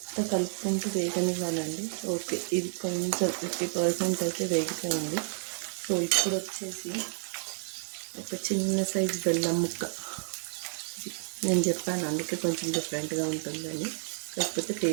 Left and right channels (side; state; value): left; silent; digital silence